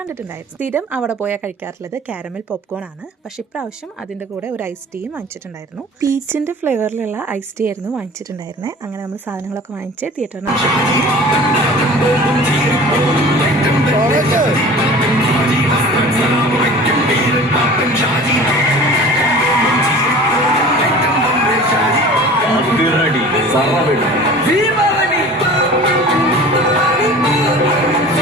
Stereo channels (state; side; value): normal; both; correlation 0.42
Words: കണ്ടിട്ടുണ്ടായിരുന്നു. സ്ഥിരം അവിടെ പോയാൽ കഴിക്കാറുള്ളത് കാരമൽ പോപ്കോൺ ആണ്. പക്ഷെ ഇപ്രാവശ്യം അതിൻ്റെ കൂടെ ഒരു ഐസ് ടീയും വാങ്ങിച്ചിട്ടുണ്ടായിരുന്നു. പീച്ചിൻ്റെ ഫ്ലേവറിലുള്ള ഐസ് ടീ ആയിരുന്നു വാങ്ങിച്ചിട്ടുണ്ടായിരുന്നത്. അങ്ങനെ നമ്മൾ സാധനങ്ങളൊക്കെ വാങ്ങിച്ച് തിയേറ്ററിന്